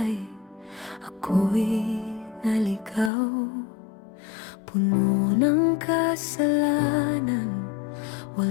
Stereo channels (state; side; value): drops out; right; at 3.1 s